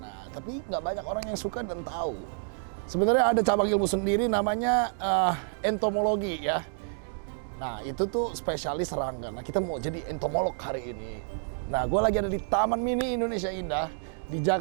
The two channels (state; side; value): silent; left; digital silence